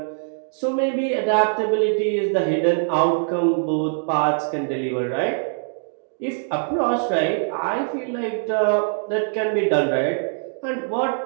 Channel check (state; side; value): silent; left; digital silence